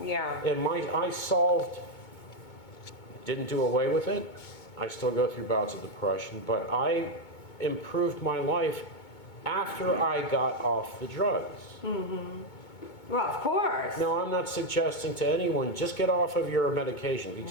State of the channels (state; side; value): late; right; 2.2 ms